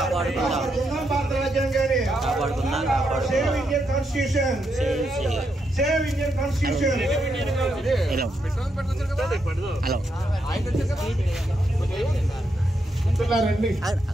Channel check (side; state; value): both; normal; correlation 0.81